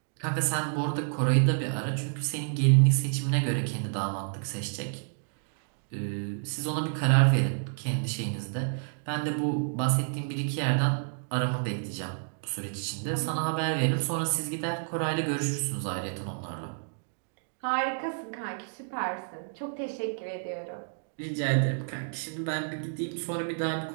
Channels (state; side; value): silent; left; digital silence